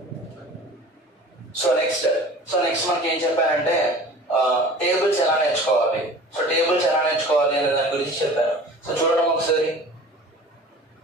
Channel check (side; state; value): both; normal; correlation 0.42